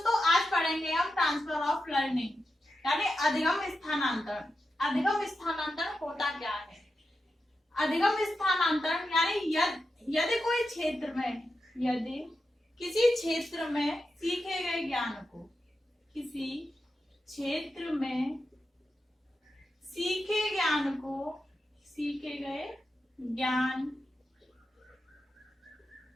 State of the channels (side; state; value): both; normal; correlation 0.89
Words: आज पढ़ेंगे हम ट्रांसफर ऑफ लर्निंग यानी अधिगम स्थानांतरण। अधिगम स्थानांतरण होता क्या है? अधिगम स्थानांतरण यानी यदि कोई क्षेत्र में, यदि किसी क्षेत्र में सीखे गए ज्ञान को, किसी क्षेत्र में सीखे गए ज्ञान